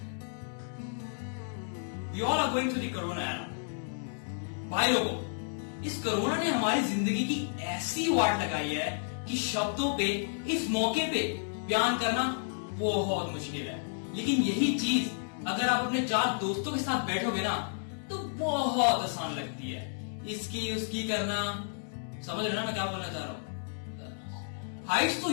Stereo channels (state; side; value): silent; right; digital silence